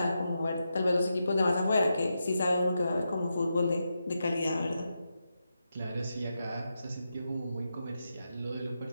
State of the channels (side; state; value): both; inverted; correlation -0.87